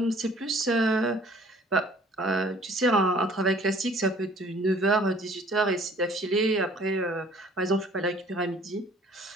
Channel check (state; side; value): normal; both; correlation 0.55